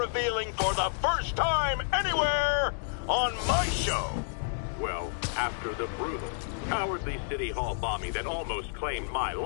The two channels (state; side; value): silent; right; digital silence